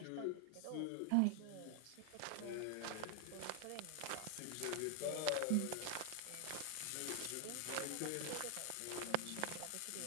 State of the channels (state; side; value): different; both; correlation 0.00